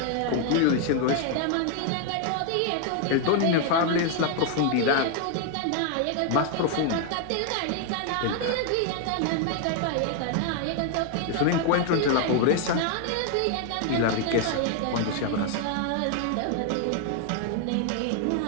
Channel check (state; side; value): different; both; correlation 0.00